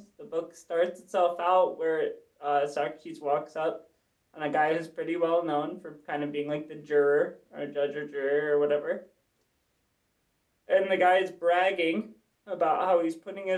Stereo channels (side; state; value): both; identical; correlation 1.00